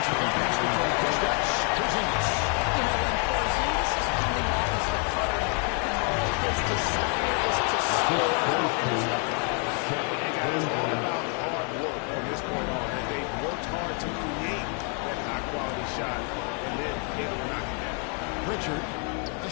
with the basketball push-ups. Porzingis. You know, when Porzingis is coming off as the cutter in the pick and roll, his desire is to score and finish up. It's all about hard work from this point on, and they've worked hard to create that high-quality shot, and then it'll knock it down. Pritchard, a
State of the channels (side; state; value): right; quieter; 39.2 dB